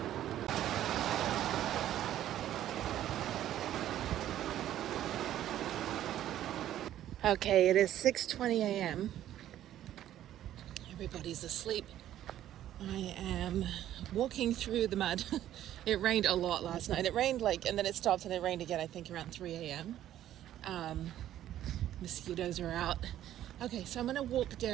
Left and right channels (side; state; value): left; quieter; 12.2 dB